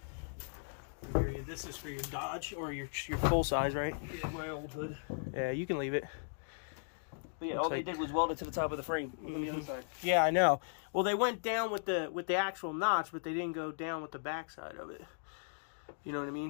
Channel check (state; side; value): silent; right; digital silence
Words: I hear you. This is for your Dodge or your full size, right? Yeah, my old hood. Yeah, you can leave it. But yeah, all they did was weld it to the top of the frame. Mm-hmm. Yeah, I know. Well, they went down with the actual notch, but they didn't go down with the backside of it. You know what I